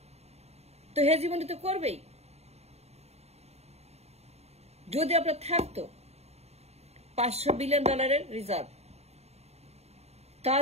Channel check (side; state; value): left; late; 0.31 ms